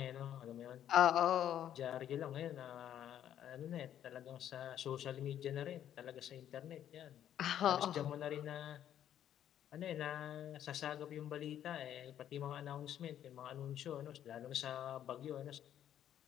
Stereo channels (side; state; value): right; quieter; 10.6 dB